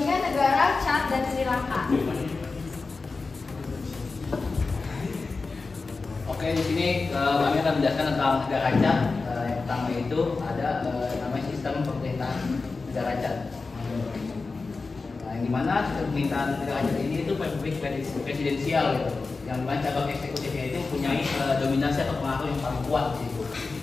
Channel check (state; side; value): quieter; right; 4.0 dB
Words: negara Chad dan Sri Lanka. Oke, di sini kami akan menjelaskan tentang negara Chad. Yang pertama itu ada namanya sistem pemerintahan negara Chad. Yang dimana sistem pemerintahan negara Chad ini itu republik presidensial, gitu. Yang dimana cabang eksekutifnya itu mempunyai dominasi atau pengaruh yang paling kuat, gitu.